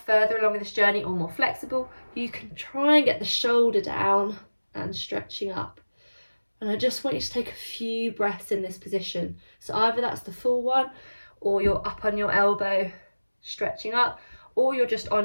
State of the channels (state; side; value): inverted; both; correlation -1.00